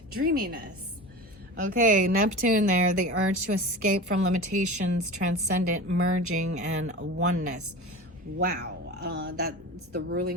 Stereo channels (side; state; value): both; normal; correlation 0.32